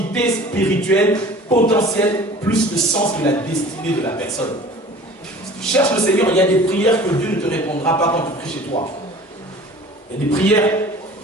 spirituelle potentielle plus le sens de la destinée de la personne. Si tu cherches le Seigneur, il y a des prières que Dieu ne te répondra pas quand tu pries chez toi. Il y a des prières,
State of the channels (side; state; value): both; normal; correlation 0.44